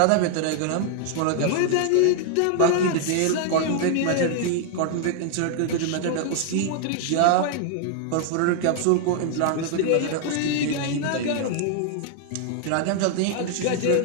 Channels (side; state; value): both; different; correlation 0.00